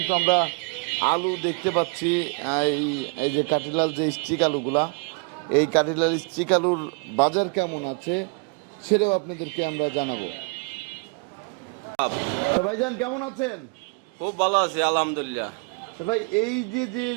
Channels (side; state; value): left; quieter; 34.3 dB